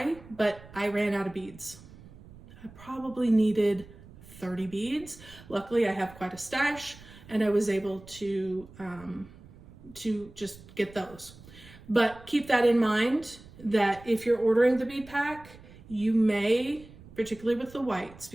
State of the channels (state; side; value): noise; right; rumble, 20 dB below the sound